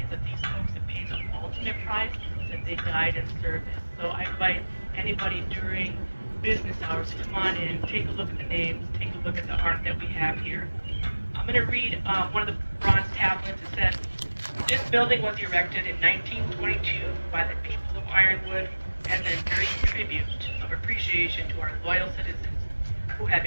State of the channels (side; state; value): both; inverted; correlation -1.00